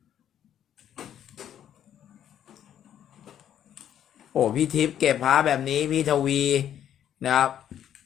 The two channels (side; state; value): right; quieter; 10.2 dB